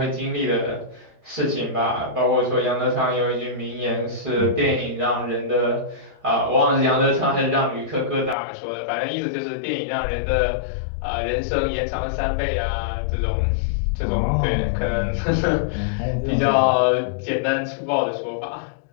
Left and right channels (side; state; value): right; drops out; at 8.3 s